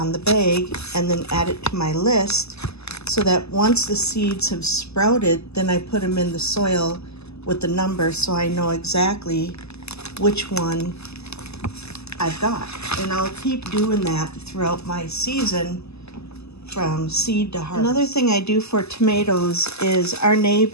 the bag and then add it to my list, so that once the seeds have sprouted, then I put them in the soil with the number, so I know exactly which one I've got. And I'll keep doing that throughout my season from seed to harvest. Another thing I do for tomatoes is our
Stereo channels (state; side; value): late; right; 0.79 ms